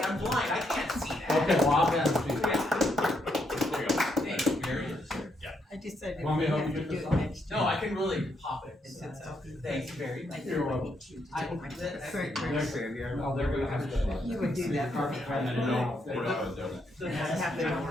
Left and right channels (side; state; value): both; normal; correlation 0.77